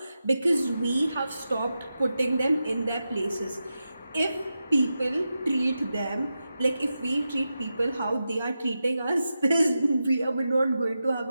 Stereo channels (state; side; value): inverted; both; correlation -0.90